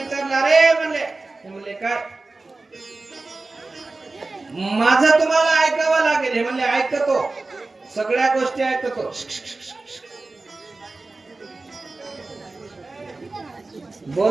अरे म्हणले काय माझं तुम्हाला ऐकावं लागेल. हे म्हणले ऐकतो, सगळ्या गोष्टी ऐकतो.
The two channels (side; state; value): left; quieter; 3.4 dB